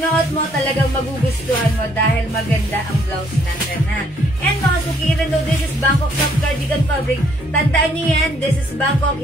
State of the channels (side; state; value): both; normal; correlation 0.67